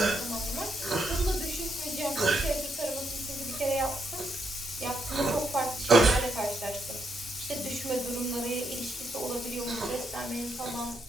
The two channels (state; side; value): normal; both; correlation 0.78